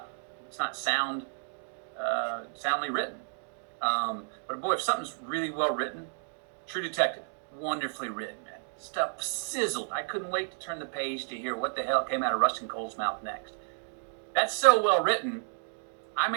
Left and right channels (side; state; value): left; silent; 57 dB below the other